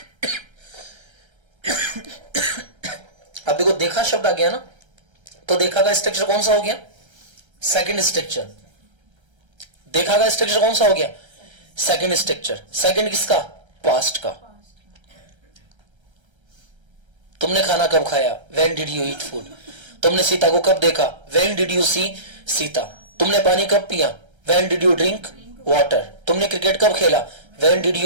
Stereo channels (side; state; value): left; late; 1.3 ms